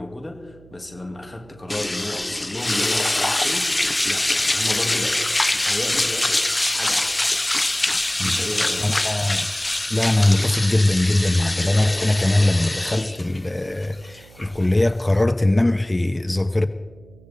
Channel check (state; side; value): noise; right; hum, 25 dB below the sound